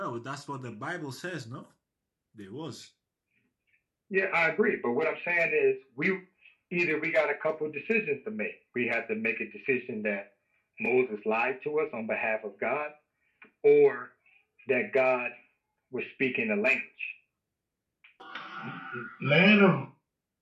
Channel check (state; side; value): identical; both; correlation 1.00